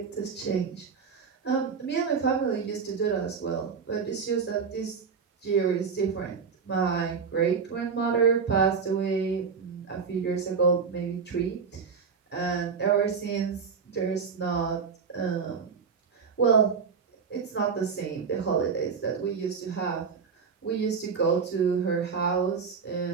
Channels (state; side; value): quieter; left; 5.8 dB